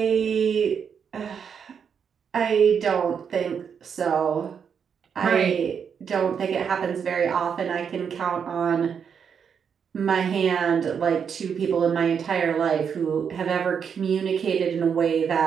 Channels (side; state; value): left; quieter; 7.1 dB